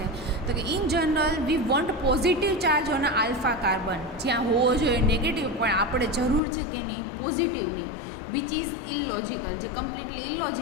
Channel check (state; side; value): drops out; right; at 6.4 s